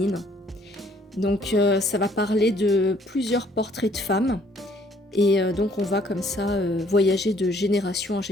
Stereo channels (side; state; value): both; normal; correlation 0.62